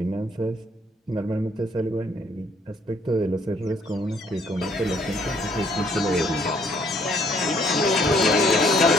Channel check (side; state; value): both; normal; correlation 0.64